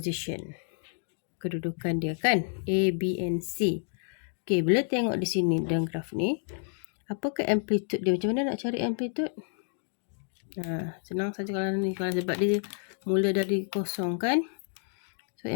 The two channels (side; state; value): right; silent; 57 dB below the other